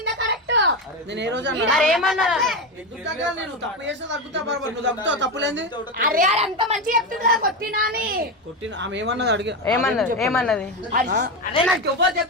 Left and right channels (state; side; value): normal; both; correlation 0.14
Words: కరెక్ట్. నేను ఏ రోజు మరి ఏమన్నదా ఎందుకు తగ్గాలి? నేను తప్పు చేస్తే తగ్గుతా బరాబర్. నువ్వు తగ్గుతావు తప్పులేంది? అరే అది అంత మంచిగా చెప్తుంది కదా కొట్టినా అని. కొట్టిన ఆమె ఏమన్నది అడిగి ఏమన్నది అదే నాకు ఎవరు